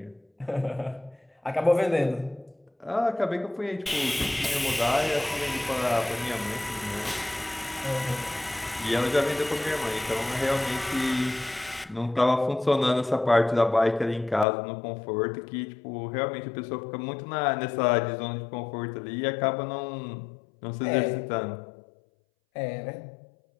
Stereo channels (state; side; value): drops out; right; at 14.5 s